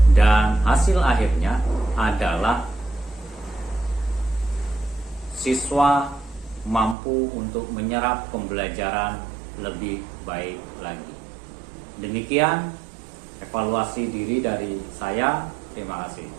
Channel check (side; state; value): left; drops out; at 7.0 s